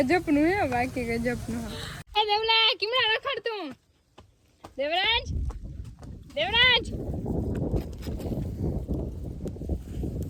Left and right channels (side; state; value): both; identical; correlation 1.00